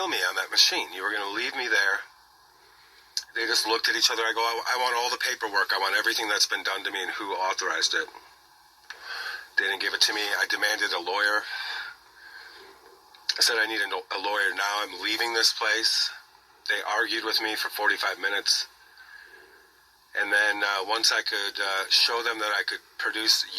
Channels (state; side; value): identical; both; correlation 1.00